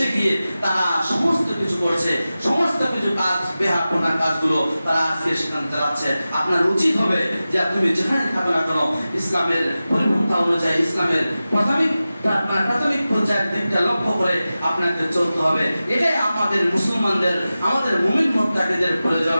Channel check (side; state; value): both; inverted; correlation -0.95